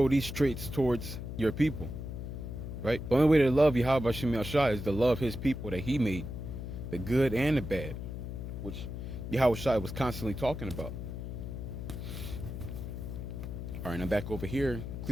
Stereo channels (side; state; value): left; noise; hum, 7 dB below the sound